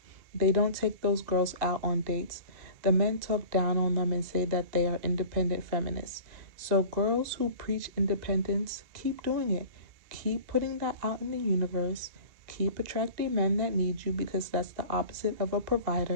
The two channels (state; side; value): late; left; 2.2 ms